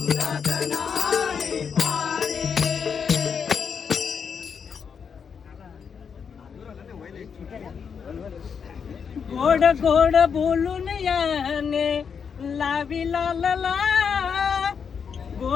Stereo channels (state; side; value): quieter; right; 6.6 dB